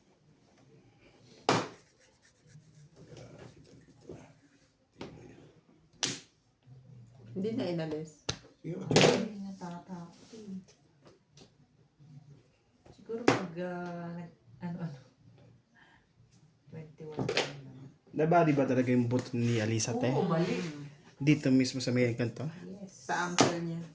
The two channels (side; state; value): both; identical; correlation 1.00